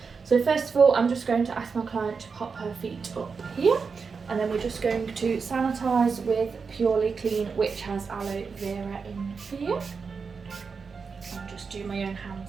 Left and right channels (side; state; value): left; quieter; 5.2 dB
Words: So first of all, I'm just going to ask my client to pop her feet up here, and then we're just going to sanitise with Purely Clean, which has aloe vera in here. I'll just do my own